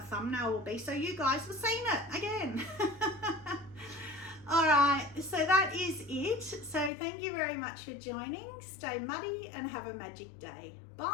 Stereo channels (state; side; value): drops out; right; at 6.9 s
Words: thumbnail will be. So you guys have seen it again. All right, so that is it. So thank you very much for joining. Stay muddy and have a magic day.